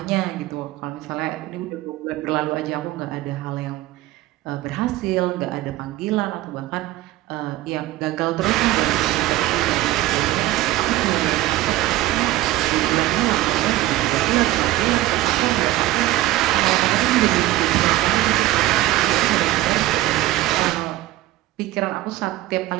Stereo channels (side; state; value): left; quieter; 16.0 dB